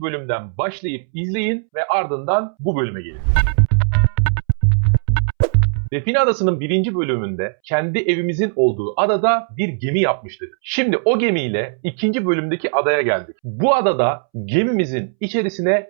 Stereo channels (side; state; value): left; silent; 67 dB below the other